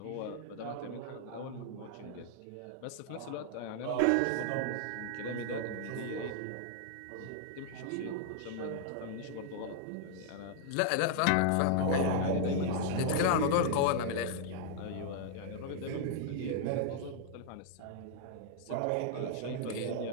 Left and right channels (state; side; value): different; both; correlation 0.00